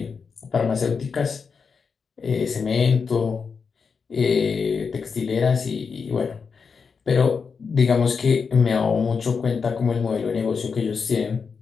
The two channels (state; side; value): quieter; right; 5.6 dB